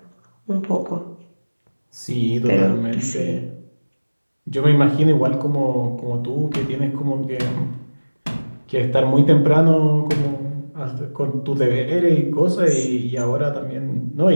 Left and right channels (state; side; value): inverted; both; correlation -1.00